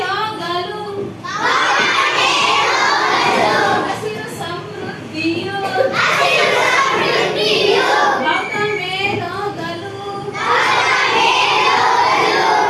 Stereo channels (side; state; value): both; identical; correlation 1.00